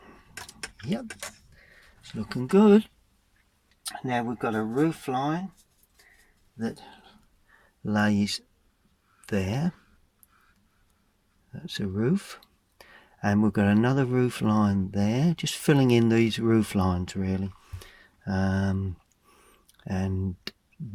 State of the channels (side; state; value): both; identical; correlation 1.00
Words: Yep, it's looking good. Now we've got a roof line that lays there. That's a roof. And we've got another roof line there, just filling in these roof lines really. And